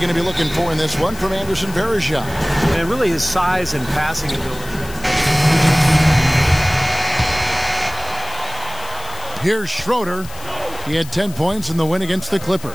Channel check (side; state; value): left; noise; hiss, 17 dB below the sound